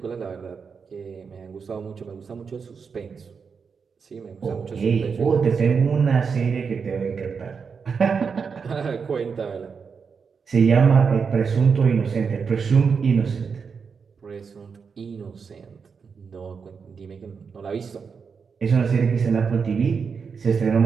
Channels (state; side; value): quieter; left; 5.8 dB